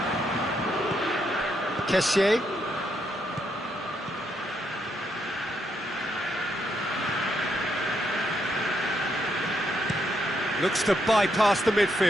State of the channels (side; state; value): both; normal; correlation 0.78